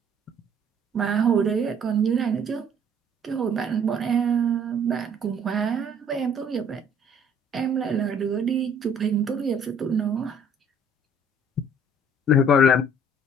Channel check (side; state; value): both; normal; correlation 0.58